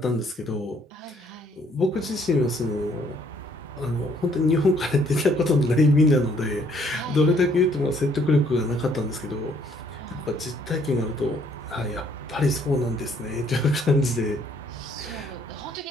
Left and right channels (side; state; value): both; normal; correlation 0.65